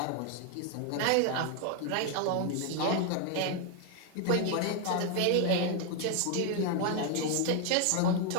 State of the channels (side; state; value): both; different; correlation 0.01